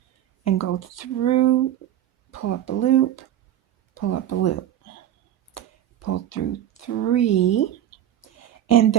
and go through, pull up a loop, pull up a loop. Pull through 3. And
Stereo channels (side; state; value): left; quieter; 11.5 dB